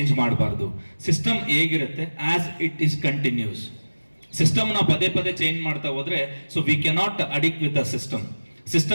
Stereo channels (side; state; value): both; inverted; correlation -1.00